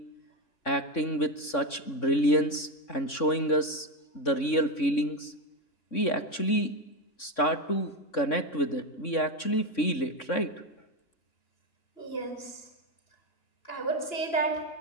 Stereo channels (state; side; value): late; right; 3.6 ms